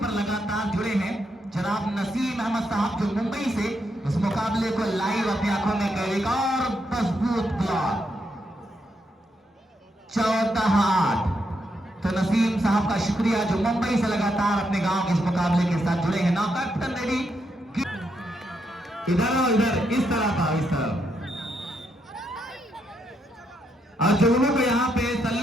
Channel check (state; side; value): normal; both; correlation 0.79